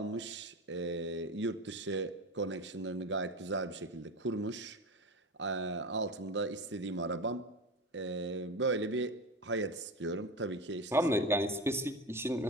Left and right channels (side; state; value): both; normal; correlation 0.25